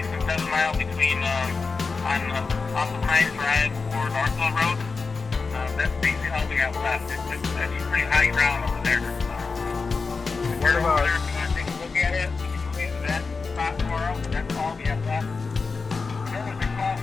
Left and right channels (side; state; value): right; quieter; 4.5 dB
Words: and 7 miles between off of Hines Drive or Northville Road. That's basically all we have left. It's actually pretty high ground over there. What about? If you want to take a look at it, we can move you to that spot tomorrow. That's all we have left. I know there's a cross